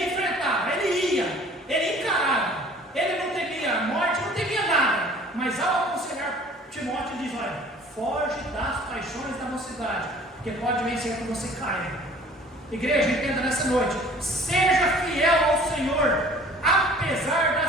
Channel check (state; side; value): normal; both; correlation 0.50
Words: enfrentava, ele ia, ele encarava. Ele não temia a morte, não temia nada. Mas ao aconselhar Timóteo, ele diz: olha, foge das paixões da mocidade, porque pode vencer que você caia. Igreja, entenda nessa noite: seja fiel ao Senhor, apesar